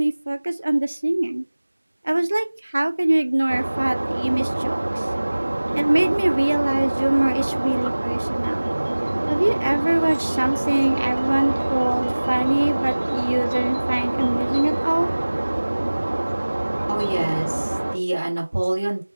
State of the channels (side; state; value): both; inverted; correlation -1.00